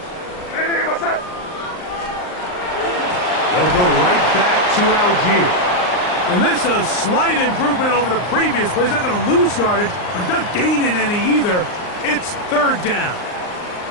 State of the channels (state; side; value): late; right; 39 ms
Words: Hey, what's that? They'll go right back to Algier. And this is a slight improvement over the previous play. He's not going to lose yardage, but he's not gaining any either. It's 3rd down.